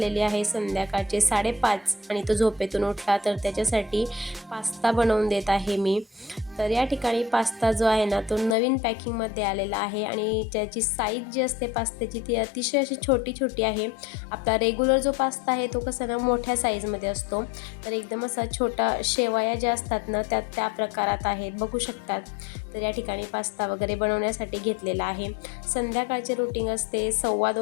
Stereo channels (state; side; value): drops out; right; at 8.6 s